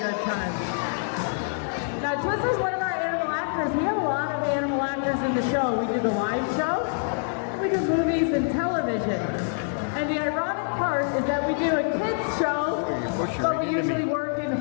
time. Now, Twizzler's one of our animal actors. We have a lot of animal actors in the show. We do the live show, we do movies and television. And the ironic part is that we do a kids show, but we usually work in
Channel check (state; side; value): silent; right; digital silence